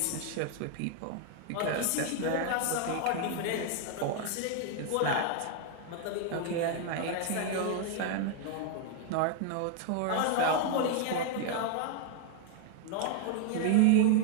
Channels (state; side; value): different; both; correlation 0.00